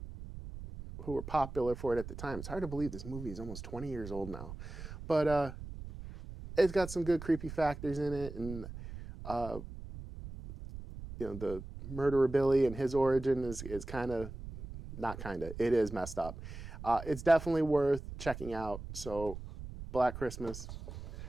were popular for it at the time. It's hard to believe this movie is almost 20 years old now. But it's got some good creepy factors in it, and the murderer Billy and his origin is kind of, not kind of, it is messed up. It's definitely worth checking out. So Black Christmas,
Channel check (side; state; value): right; noise; rumble, 11 dB below the sound